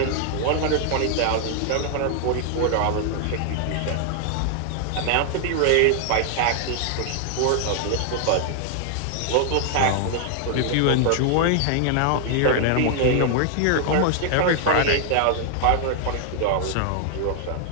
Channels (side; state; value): both; different; correlation 0.00